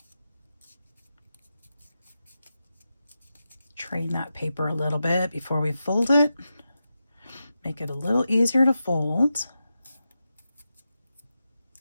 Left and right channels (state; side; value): inverted; both; correlation -0.90